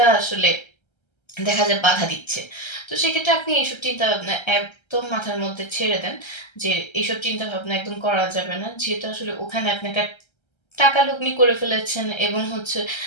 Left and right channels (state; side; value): late; right; 1.3 ms